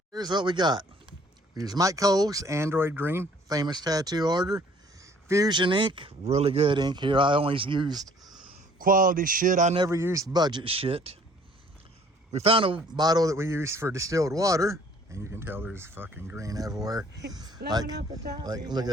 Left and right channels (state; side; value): normal; both; correlation 0.57